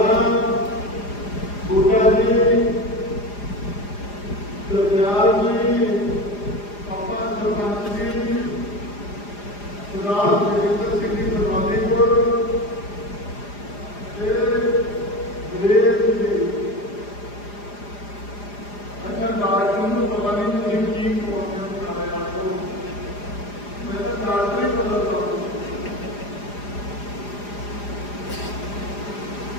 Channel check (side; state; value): right; late; 4.9 ms